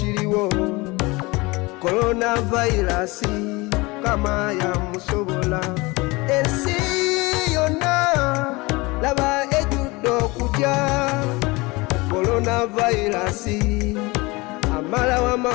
coronavirus kama ya musobola ensi yonna laba ejudde okutya coronavirus amala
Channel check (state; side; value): quieter; right; 23.9 dB